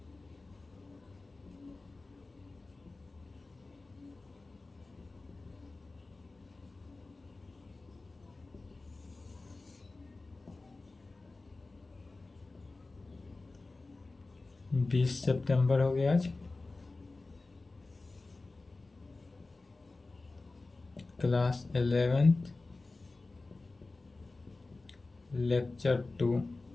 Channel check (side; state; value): right; quieter; 3.4 dB